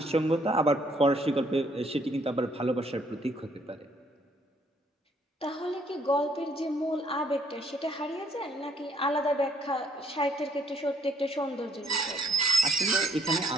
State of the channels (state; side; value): normal; both; correlation 0.66